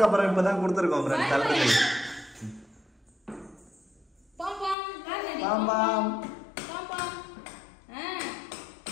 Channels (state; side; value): drops out; right; at 4.8 s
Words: அப்புறம் இப்பதான் கொடுத்துருக்கோம் ஃப்ரெண்ட்ஸ் தள்ளுறது.